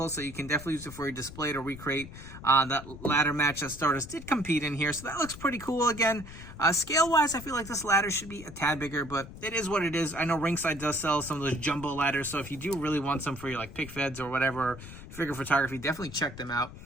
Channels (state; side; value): noise; left; rumble, 14 dB below the sound